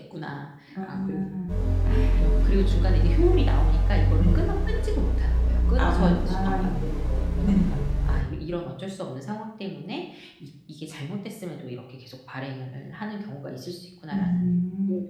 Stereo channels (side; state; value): both; identical; correlation 1.00